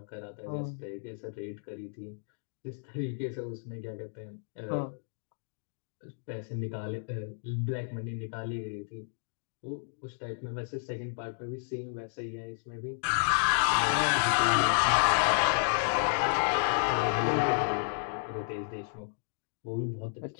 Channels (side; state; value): right; silent; digital silence